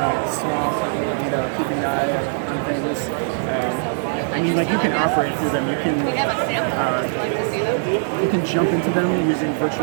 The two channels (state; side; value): silent; left; digital silence